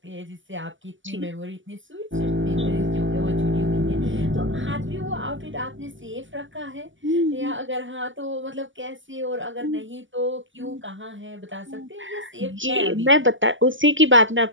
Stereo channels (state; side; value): late; left; 0.56 ms